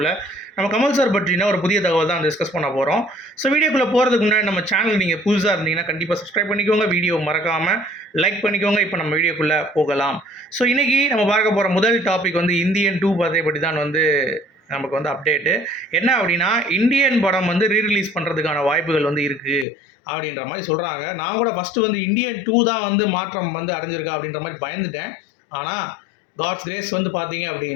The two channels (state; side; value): drops out; right; at 19.7 s